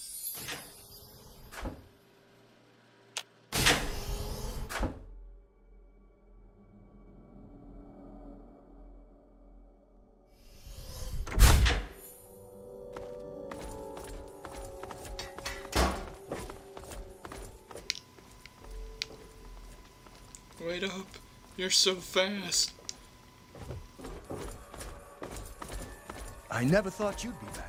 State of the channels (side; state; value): both; identical; correlation 1.00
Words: Wait up. You're so fast. I never thought you'd be